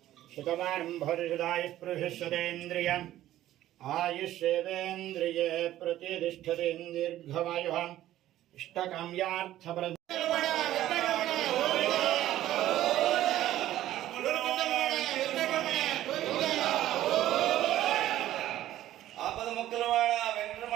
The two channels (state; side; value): quieter; left; 13.7 dB